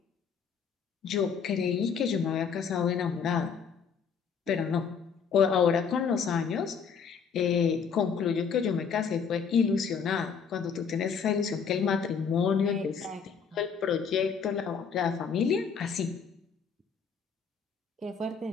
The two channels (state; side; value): quieter; right; 6.3 dB